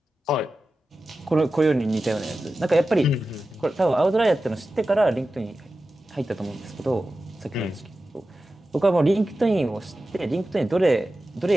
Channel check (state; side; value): normal; both; correlation 0.93